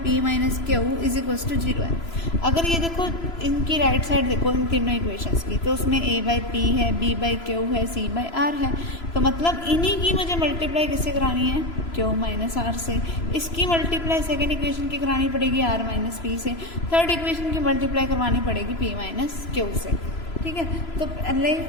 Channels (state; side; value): late; right; 3.0 ms